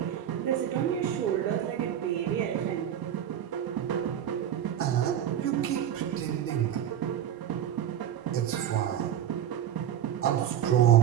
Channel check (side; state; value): left; quieter; 10.2 dB